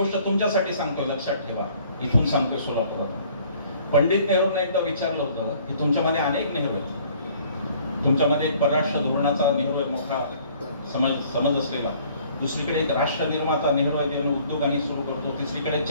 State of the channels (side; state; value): both; inverted; correlation -0.57